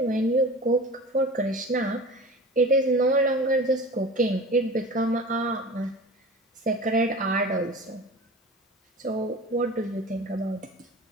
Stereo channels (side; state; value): both; normal; correlation 0.36